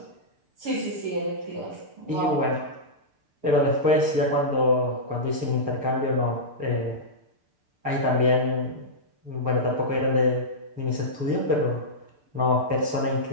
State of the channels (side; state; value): left; late; 6.7 ms